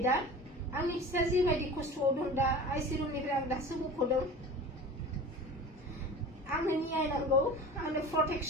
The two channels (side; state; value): both; normal; correlation 0.36